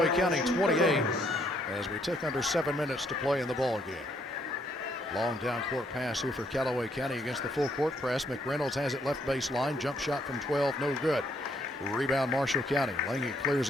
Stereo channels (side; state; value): both; normal; correlation 0.70